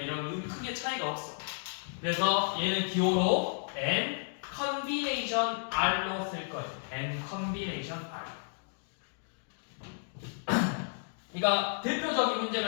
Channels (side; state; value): right; silent; digital silence